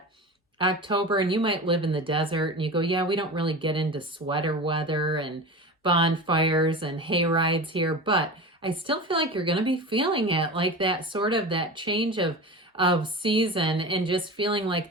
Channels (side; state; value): both; normal; correlation 0.30